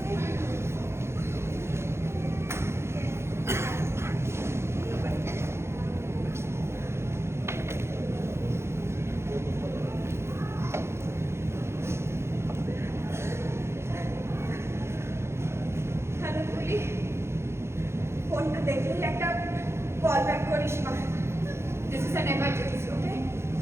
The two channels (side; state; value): left; late; 0.13 ms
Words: ফোনটা দেখলেই একটা কল ব্যাক করিস মা। দিস ইজ অ্যান এমার্জেন্সি, ওকে?